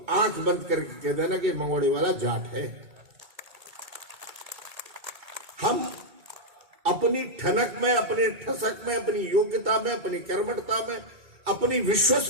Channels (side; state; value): left; late; 2.2 ms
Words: आंख बंद करके कह देना कि मंगोड़े वाला जाट है। हम अपनी ठनक में, अपने ठसक में, अपनी योग्यता में, अपनी कर्मठता में, अपनी